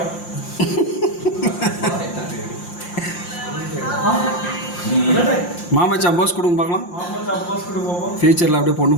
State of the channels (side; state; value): right; late; 5.7 ms